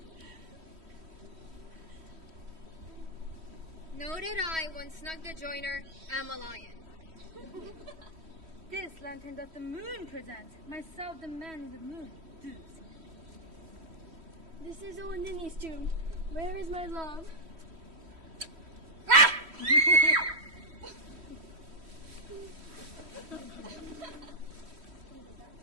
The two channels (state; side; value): late; left; 3.1 ms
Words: Noted I, when snug the joiner, am a lion. This lantern that the moon presents, myself the man in the moon. This is old Ninny's tomb. Where is my love?